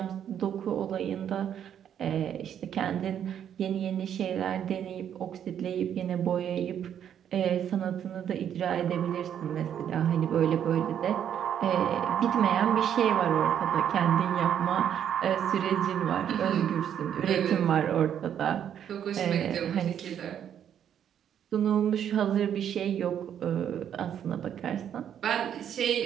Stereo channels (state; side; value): quieter; left; 9.3 dB